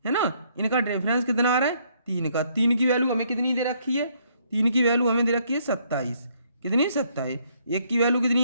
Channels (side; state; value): both; inverted; correlation -0.69